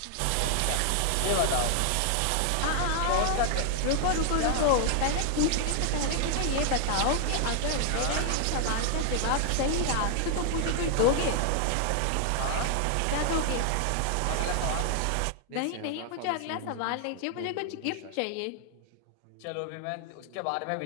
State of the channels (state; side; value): different; both; correlation 0.00